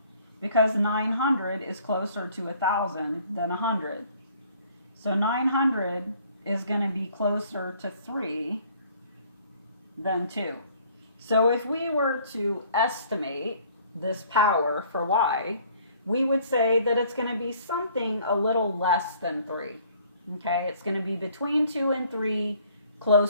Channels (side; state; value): both; inverted; correlation -0.58